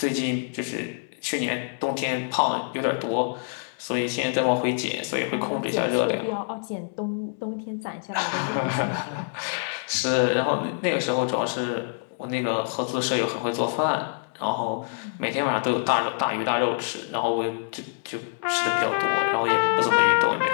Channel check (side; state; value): right; silent; 61 dB below the other